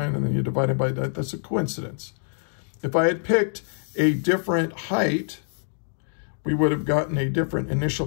and then you divide it by that. That's a coincidence. If I had picked a different height, we would have gotten a different initial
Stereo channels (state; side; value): silent; right; digital silence